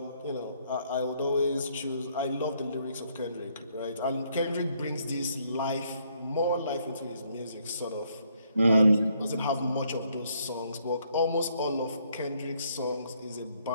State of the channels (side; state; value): both; inverted; correlation -0.70